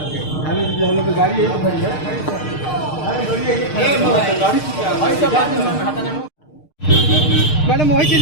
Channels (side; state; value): right; late; 6.5 ms